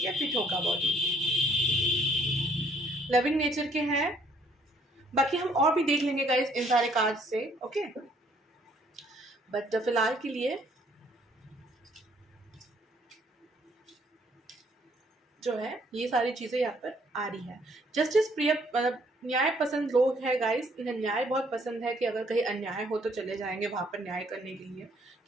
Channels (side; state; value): both; normal; correlation 0.64